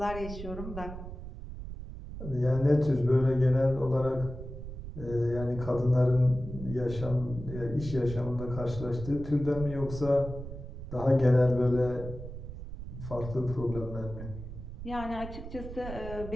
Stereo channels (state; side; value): noise; right; rumble, 10 dB below the sound